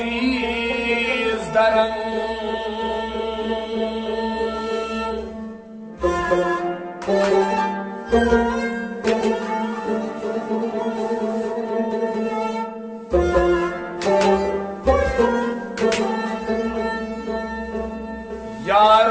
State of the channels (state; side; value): identical; both; correlation 1.00